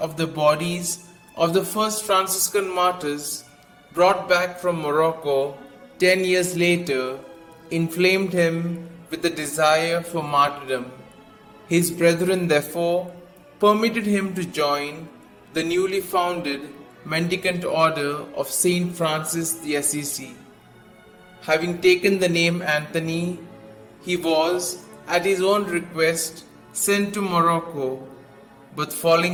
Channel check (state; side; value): identical; both; correlation 1.00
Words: of the bodies of the first Franciscan martyrs brought back from Morocco 10 years later inflamed him with the desire for martyrdom. His brethren therefore permitted him to join the newly founded mendicant order of Saint Francis the Assisi. Having taken the name Anthony, he was, at his own request, sent to Morocco, but